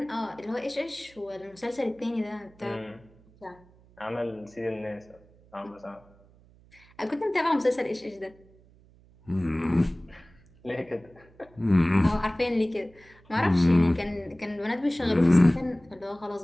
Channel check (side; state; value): right; noise; hum, 27 dB below the sound